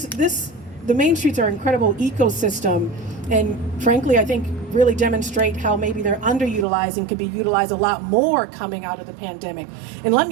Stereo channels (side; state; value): left; drops out; at 6.7 s